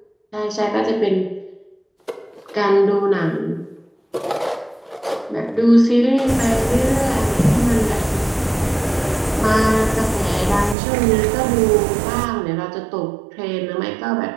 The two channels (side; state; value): left; drops out; at 10.8 s